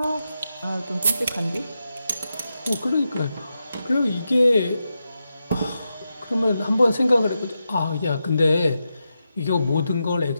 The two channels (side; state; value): both; inverted; correlation -0.88